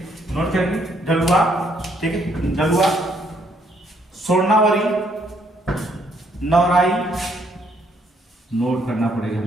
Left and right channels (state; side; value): normal; both; correlation 0.69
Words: नोट करेंगे, ढलुआ, ठीक है, ढलुआ। स्वर्णावरी, नवराई, नोट करना पड़ेगा